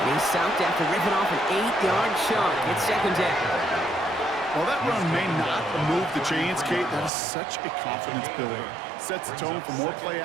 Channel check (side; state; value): left; drops out; at 7.1 s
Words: he's stopped after ripping off an 8-yard chunk. It's second down. While that run may not move the chains, Kate, that is such a confidence builder. Sets the tone for more play